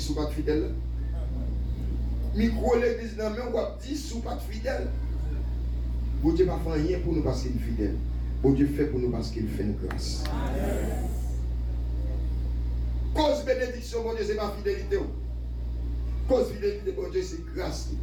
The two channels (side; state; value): both; identical; correlation 1.00